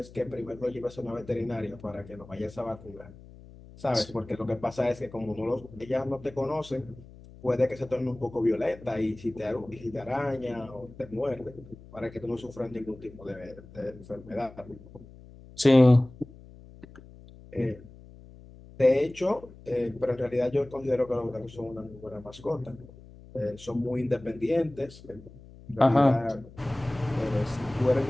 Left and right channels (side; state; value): left; noise; hum, 19 dB below the sound